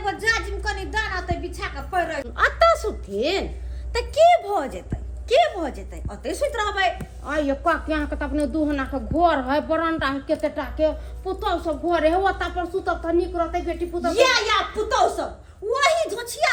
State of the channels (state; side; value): identical; both; correlation 1.00